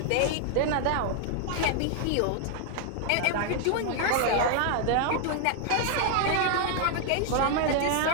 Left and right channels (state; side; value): different; both; correlation 0.00